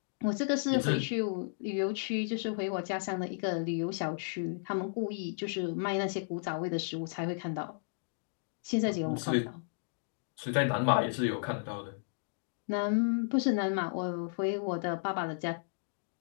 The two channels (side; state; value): right; silent; digital silence